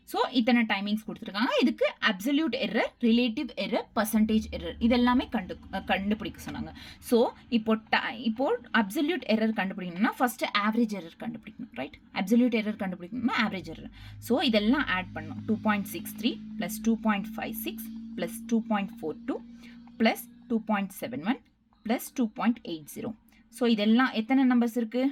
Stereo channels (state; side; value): identical; both; correlation 1.00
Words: So இத்தனை டைமிங்ஸ் கொடுத்துருக்காங்க. இதுக்கு absolute error, relative error, percentage error இதெல்லாமே கண்டுபிடிக்க சொன்னாங்க. ஸோ இப்போ அப்சல்யூட் எரர் கண்டுபிடிக்கணும்னா ஃபஸ்ட்டு ஆவரேஜ் எரர் கண்டுபிடிக்கணும். ரைட்? அப்சல்யூட் எரர் கண்டுபிடிக்கணும்னா ஆவரேஜ் எரர். ஸோ இதெல்லாம் ஆட் பண்ணணும். 2.63 + 2.56 + 2.42 + 2.71 + 2.80. ஸோ இதெல்லாம் எத்தனை நம்பர்ஸ்